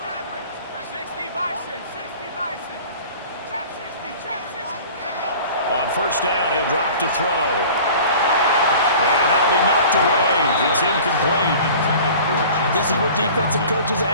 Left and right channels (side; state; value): both; inverted; correlation -0.43